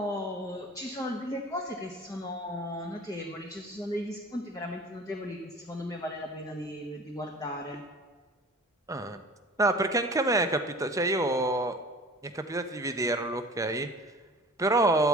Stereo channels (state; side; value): normal; both; correlation 0.43